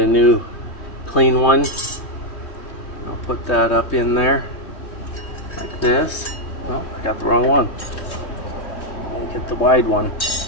new clean one. I'll put that up in there like this. Oh, I got the wrong one. I'll get the wide one.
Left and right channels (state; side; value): late; right; 3.2 ms